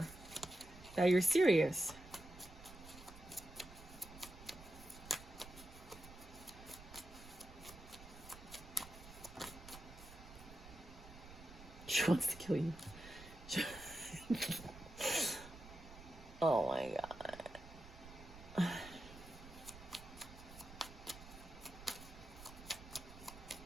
that you're serious. She wants to kill you. Oh my God.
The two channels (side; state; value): right; noise; rumble, 16 dB below the sound